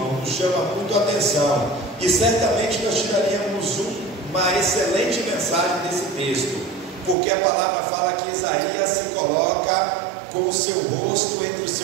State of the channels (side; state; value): left; drops out; at 7.2 s